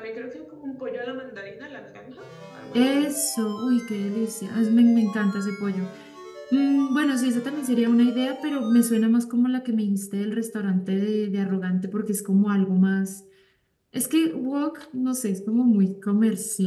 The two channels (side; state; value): both; identical; correlation 1.00